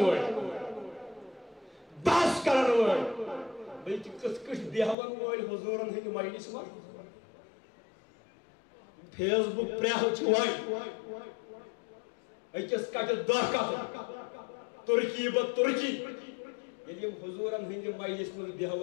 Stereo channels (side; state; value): right; drops out; at 5.0 s